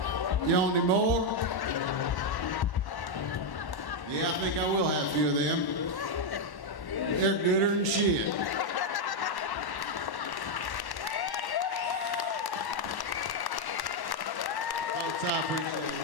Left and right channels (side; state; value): right; late; 1.1 ms